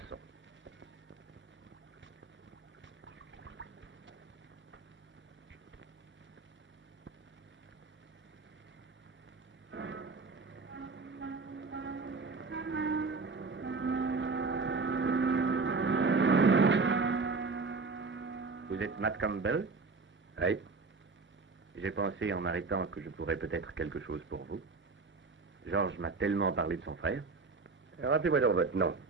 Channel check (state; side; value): quieter; left; 4.2 dB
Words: Vous êtes Matt Campbell? Oui. J'ai pensé en m'arrêtant que je pourrais peut-être quelque chose pour vous. Georges m'a tellement parlé de son frère. Rappelez-moi donc votre nom.